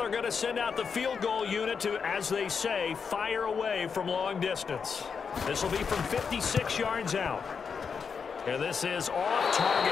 going to send out the field goal unit to, as they say, fire away from long distance. This will be from 56 yards out. And this is off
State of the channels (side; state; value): right; quieter; 6.0 dB